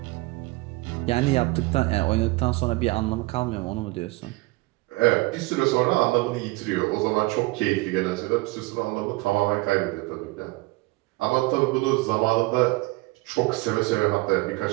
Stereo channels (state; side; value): quieter; left; 22.6 dB